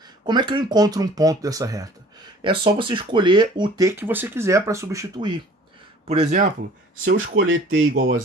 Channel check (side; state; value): both; normal; correlation 0.50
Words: Como é que eu encontro um ponto dessa reta? É só você escolher o t que você quiser para substituir. Por exemplo, se eu escolher t igual a